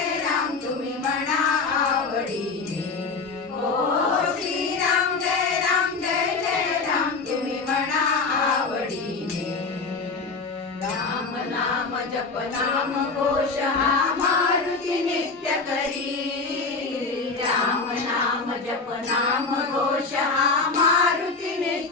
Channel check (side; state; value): right; quieter; 4.2 dB